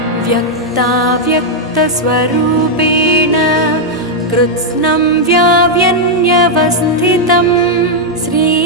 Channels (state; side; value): normal; both; correlation -0.03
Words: व्यक्ताव्यक्तस्वरूपेण कृत्स्नं व्याव्यन्यवस्थितं